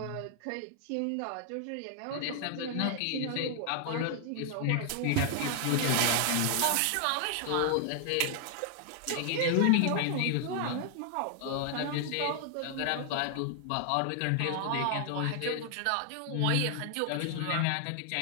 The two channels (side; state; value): both; different; correlation 0.00